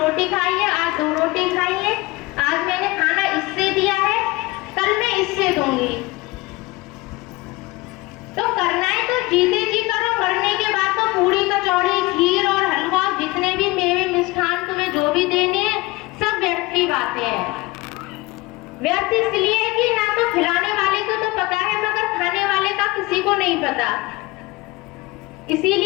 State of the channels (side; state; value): right; quieter; 22.0 dB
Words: खाई है, आज 2 रोटी खाई है, आज मैंने खाना इससे दिया है, कल मैं इससे दूंगी। तो करना है तो जीते जी करो, मरने के बाद तो पूरी कचौड़ी, खीर और हलवा, जितने भी मेवे मिष्ठान तुम्हें जो भी देने हैं, सब व्यर्थ की बातें हैं। व्यर्थ इसलिए है कि ना तो खिलाने वाले को तो पता है, मगर खाने वाले का किसी को नहीं पता।